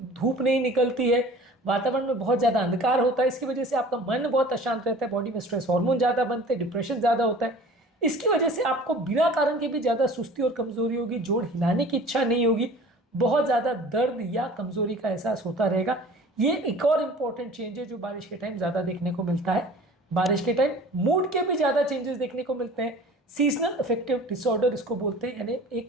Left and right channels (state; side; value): normal; both; correlation 0.45